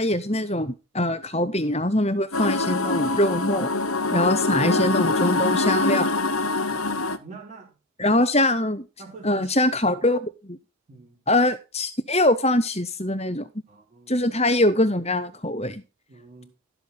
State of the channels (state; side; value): normal; both; correlation 0.22